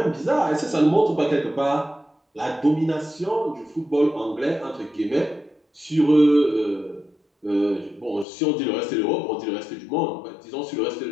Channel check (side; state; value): right; drops out; at 8.2 s